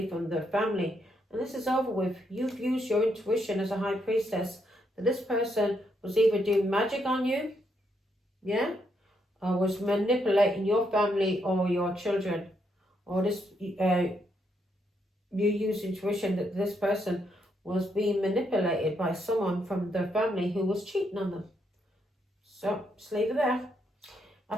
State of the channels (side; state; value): both; normal; correlation 0.77